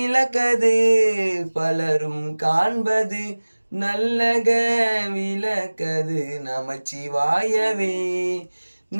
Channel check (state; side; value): inverted; both; correlation -1.00